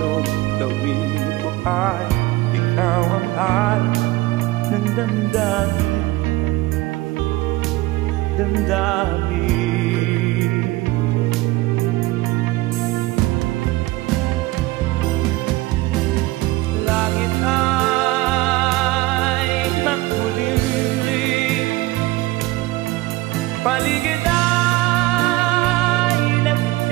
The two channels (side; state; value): left; quieter; 19.2 dB